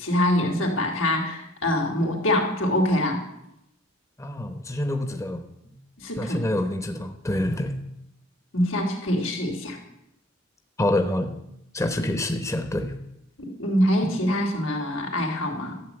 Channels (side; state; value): both; normal; correlation 0.59